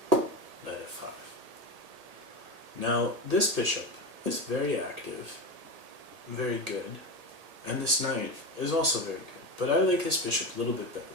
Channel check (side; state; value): left; late; 1.8 ms